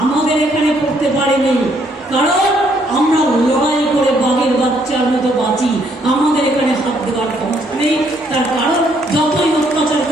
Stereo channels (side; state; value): both; normal; correlation 0.69